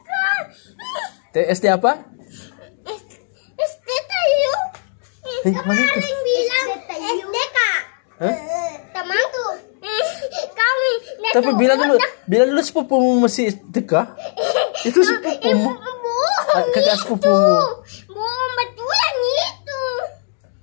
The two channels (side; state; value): right; silent; digital silence